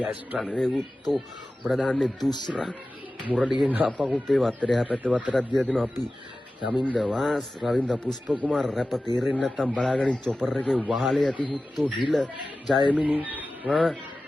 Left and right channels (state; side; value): normal; both; correlation 0.95